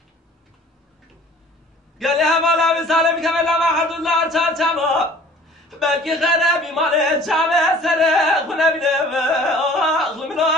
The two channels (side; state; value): both; normal; correlation 0.49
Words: قال يا مولا بسالم كمل ما حد الله تشاما بلكي خرابي مال تشاما سر خنا بنم اخل من